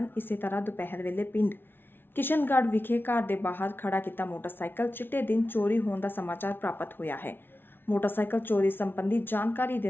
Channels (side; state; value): right; late; 0.10 ms